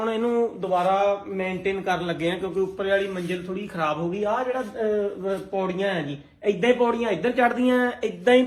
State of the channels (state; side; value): identical; both; correlation 1.00